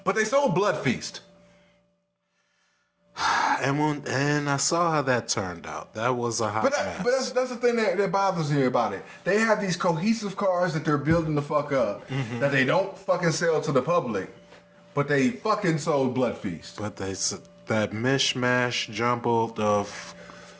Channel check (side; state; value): both; identical; correlation 1.00